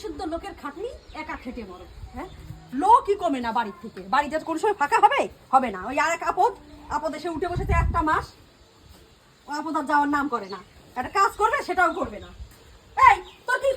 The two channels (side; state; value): both; identical; correlation 1.00